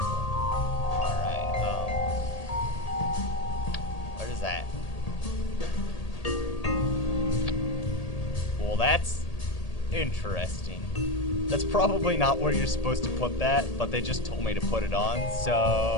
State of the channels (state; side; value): late; right; 1.8 ms